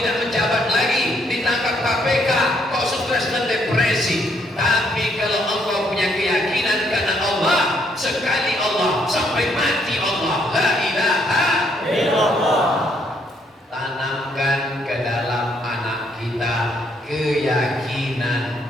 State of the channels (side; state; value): both; normal; correlation 0.71